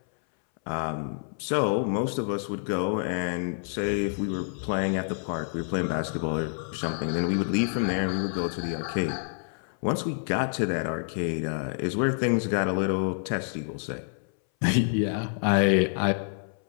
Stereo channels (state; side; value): silent; right; 60 dB below the other